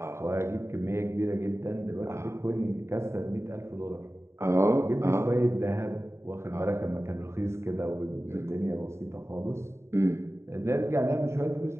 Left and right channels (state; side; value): late; left; 0.13 ms